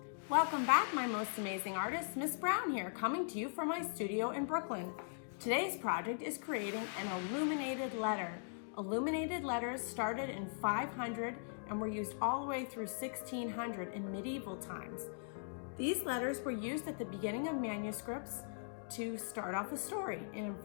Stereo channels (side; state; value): right; silent; digital silence